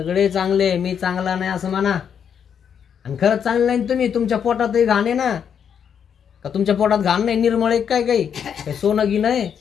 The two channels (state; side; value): quieter; right; 7.8 dB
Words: चांगले, मी चांगला नाही असं म्हणा. आणि खरंच चांगलं नाही तुम्ही, तुमच्या पोटातही घाण आहे ना, का तुमच्या पोटात घाण नाही? निर्मळ एक काय काही सोनं गी नाही.